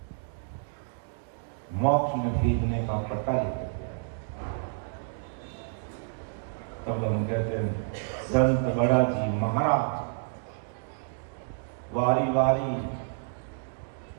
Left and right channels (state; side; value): silent; left; digital silence